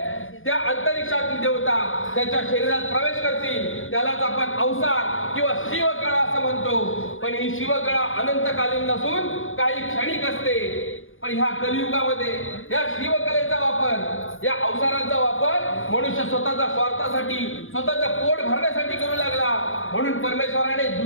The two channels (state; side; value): late; right; 0.59 ms